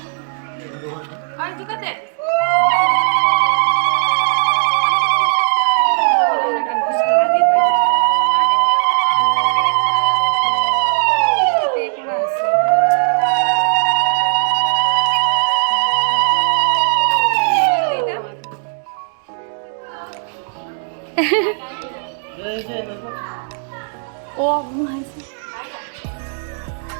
আর দুকাতে ও ঘুমাইছে।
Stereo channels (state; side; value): silent; left; digital silence